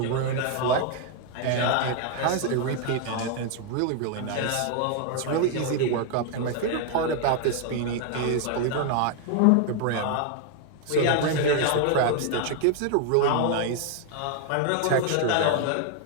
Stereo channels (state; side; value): different; both; correlation 0.00